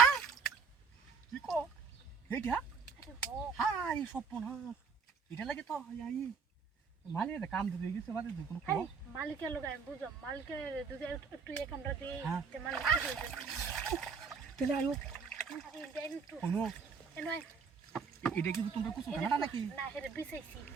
কি কো এইটা হ্যাঁ এই স্বপ্ন হ্যাঁ এটা লাগে তো মালিক কাম দিতে গেছে বাদে কোনো খবর মালিকের লোক আমি বুঝলাম মালিকের দুধে একটু এক আমরা দিই যে মালিক তাহলে আয়ো আরে দেন একটু কোনো এনয় এটা কি তোমরা কিছু জানা নাকি না হেরে বিছাইছি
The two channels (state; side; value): quieter; left; 5.6 dB